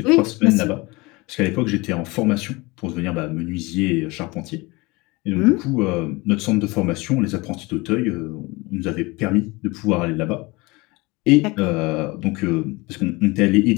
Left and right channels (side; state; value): right; quieter; 24.0 dB